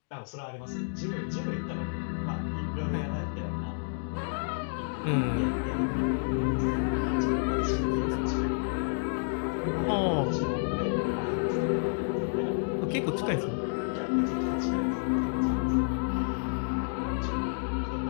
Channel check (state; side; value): silent; right; digital silence